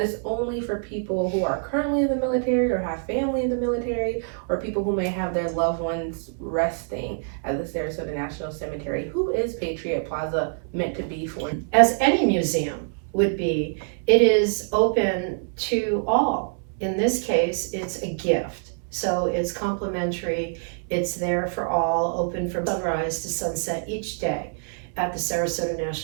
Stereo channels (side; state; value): left; silent; 62 dB below the other